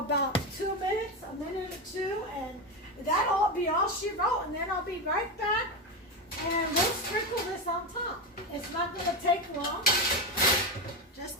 2 minutes, a minute or two, and that'll be all she wrote. And then I'll be right back, and we'll sprinkle this on top. It's not going to take long,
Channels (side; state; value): both; normal; correlation 0.14